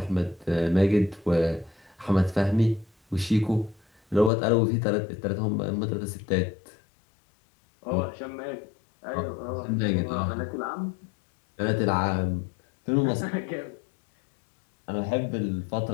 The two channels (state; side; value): drops out; right; at 4.3 s